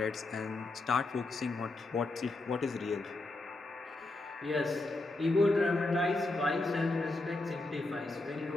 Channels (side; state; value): right; quieter; 3.0 dB